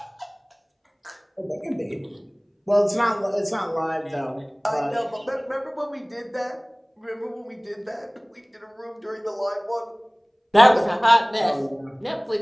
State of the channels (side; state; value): both; identical; correlation 1.00